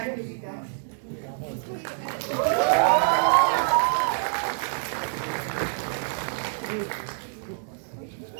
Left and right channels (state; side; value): silent; left; digital silence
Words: to be done.